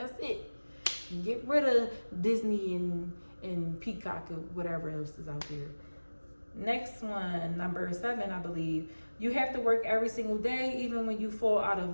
it. Get rid of Disney and Peacock or whatever else is out there. Next one, number 7, I believe. You have to work every single day, even when you fall out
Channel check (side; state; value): both; inverted; correlation -1.00